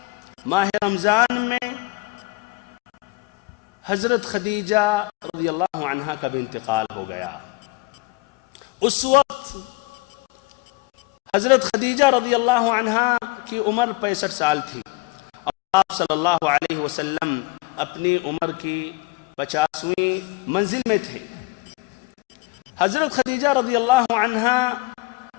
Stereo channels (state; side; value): quieter; right; 22.7 dB